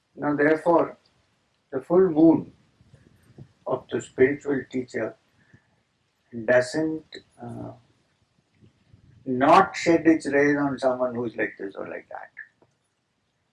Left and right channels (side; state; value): both; identical; correlation 1.00